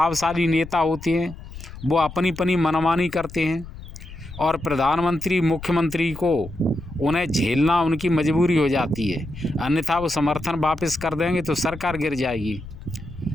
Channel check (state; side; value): noise; left; rumble, 14 dB below the sound